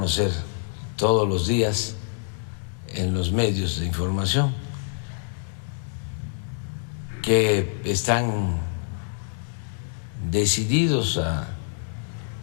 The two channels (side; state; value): right; silent; digital silence